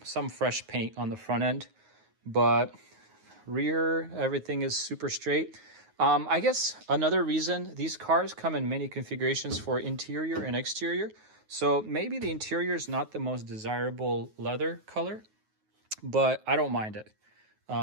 fresh paint on the front end, but rear, everything is super straight. I guess another reason, these cars come in many configurations for interior and exterior. So maybe the interior is not the most desirable leather color, but I don't mind it.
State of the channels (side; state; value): left; late; 9.4 ms